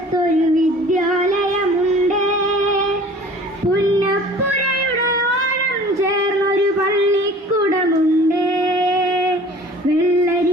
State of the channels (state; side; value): normal; both; correlation 0.46